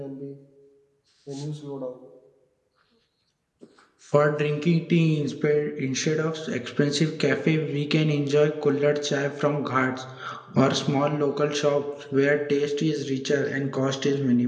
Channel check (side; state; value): both; identical; correlation 1.00